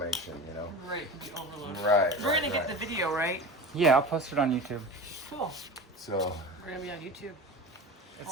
Right, to be overloaded. Right. We're gonna get the video, right? Yeah, I'll post it on YouTube. Cool. So We're gonna be on YouTube. It's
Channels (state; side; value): normal; both; correlation 0.30